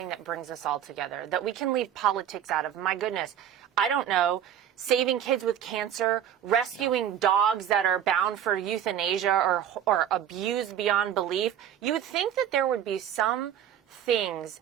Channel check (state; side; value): quieter; left; 9.9 dB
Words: that brings us all together, that we can leave politics out of. My goodness, I don't know. Saving kids with cancer, rescuing dogs that are bound for euthanasia or abused beyond belief. You would think that there would be some things